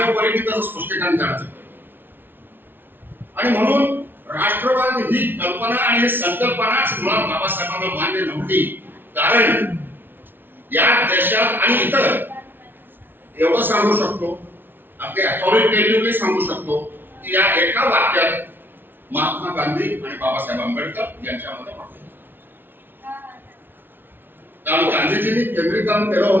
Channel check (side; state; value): left; late; 0.099 ms